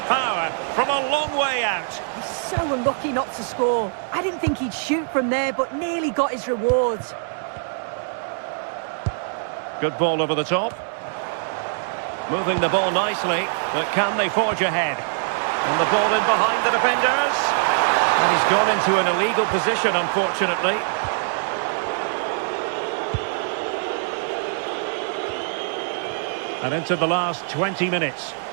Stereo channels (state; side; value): silent; left; digital silence